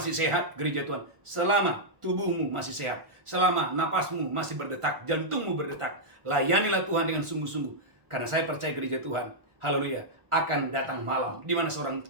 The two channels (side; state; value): left; late; 1.4 ms